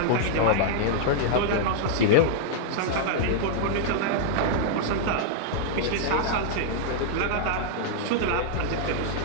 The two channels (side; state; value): both; different; correlation -0.01